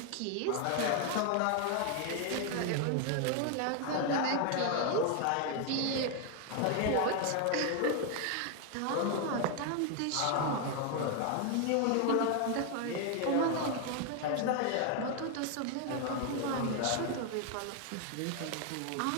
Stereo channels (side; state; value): both; different; correlation 0.00